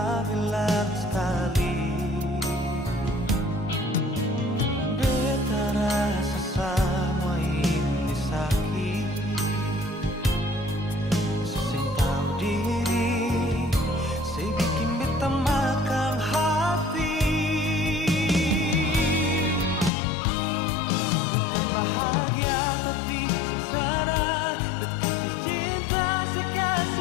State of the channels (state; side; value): drops out; right; at 19.9 s